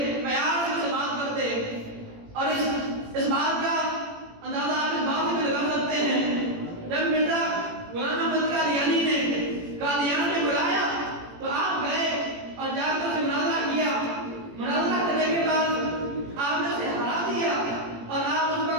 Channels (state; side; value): late; left; 18 ms